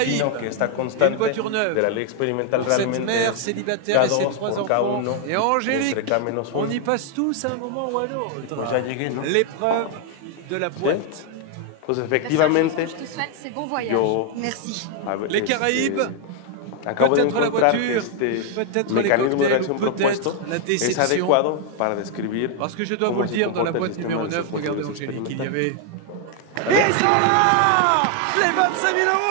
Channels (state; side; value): different; both; correlation 0.00